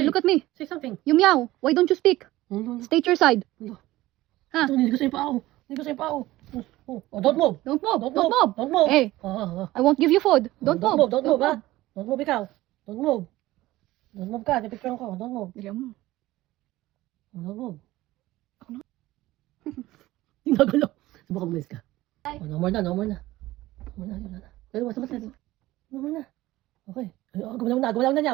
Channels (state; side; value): quieter; left; 17.2 dB